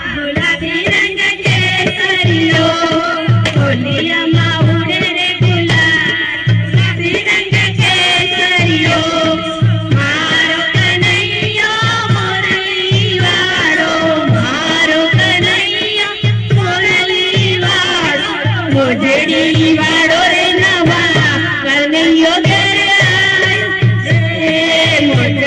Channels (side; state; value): both; identical; correlation 1.00